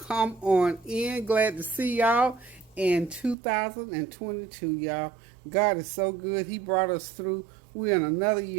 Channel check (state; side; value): drops out; left; at 3.4 s